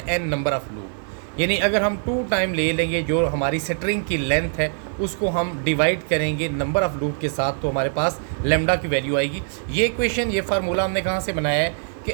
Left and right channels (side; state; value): left; silent; digital silence